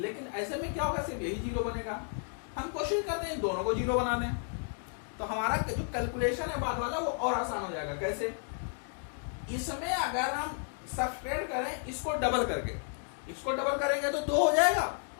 ऐसे में क्या होगा, सिर्फ यही 0 बनेगा। हम कोशिश करते हैं इन दोनों को 0 बना दें, तो हमारा जो कैलकुलेशन है बाद वाला वो और आसान हो जाएगा। कैसे? इसमें अगर हम सब्ट्रैक्ट करें इसको डबल करके, इसको डबल करेंगे तो 2 हो जाएगा,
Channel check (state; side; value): silent; right; 56 dB below the other